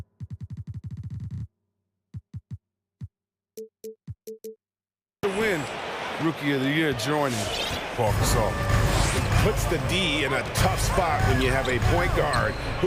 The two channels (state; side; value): identical; both; correlation 1.00